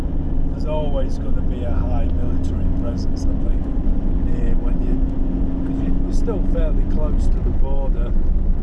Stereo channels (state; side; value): identical; both; correlation 1.00